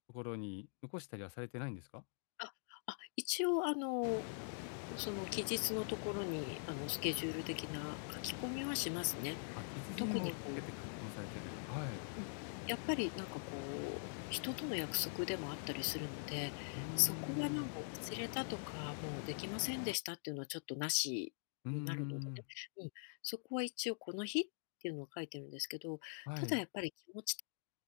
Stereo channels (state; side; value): silent; right; digital silence